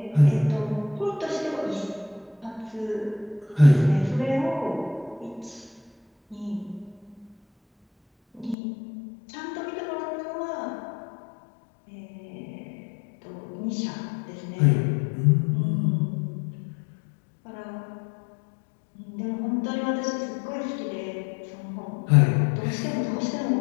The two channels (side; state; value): right; drops out; at 8.6 s